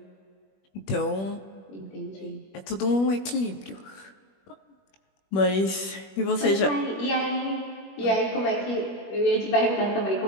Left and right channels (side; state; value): right; late; 21 ms